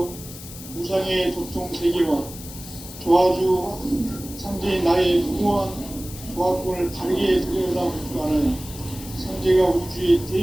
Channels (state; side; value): noise; left; hiss, 14 dB below the sound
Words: 무상의 도통 세계와 조화주 상제인 나의 무모한 조화권을 바르게 들여다볼 줄 알아야 상제가 우주의